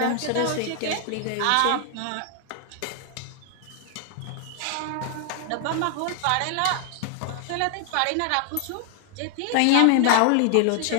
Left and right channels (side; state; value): both; different; correlation 0.00